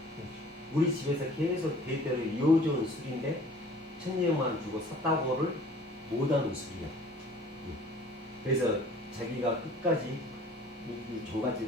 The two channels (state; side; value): normal; both; correlation 0.50